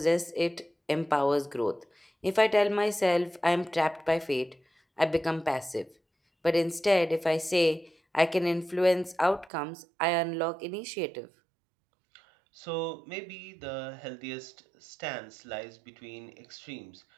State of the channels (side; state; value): left; drops out; at 9.5 s